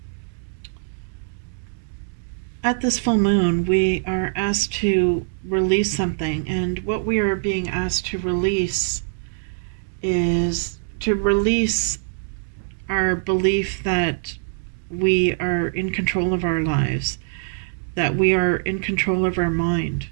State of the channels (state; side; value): silent; left; 63 dB below the other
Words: at this full moon, we are asked to release something, and what we are being asked to release is to release our belief that we are in control of our lives, that we are in control of our mind.